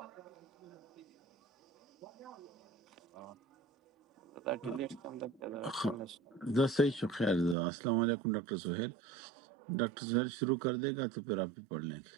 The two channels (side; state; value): left; drops out; at 7.6 s